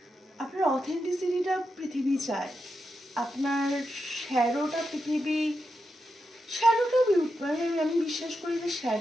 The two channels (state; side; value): normal; both; correlation 0.87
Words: আপনার অথেন্টিসিটিটা পৃথিবী চায়, আপনার শ্যারোটা পৃথিবী শ্যাডোটা মানে আমি বিশ্বাস করি যে